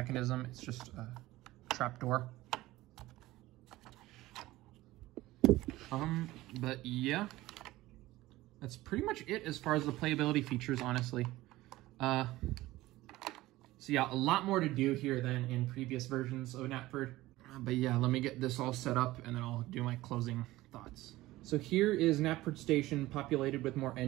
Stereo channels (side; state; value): left; quieter; 17.6 dB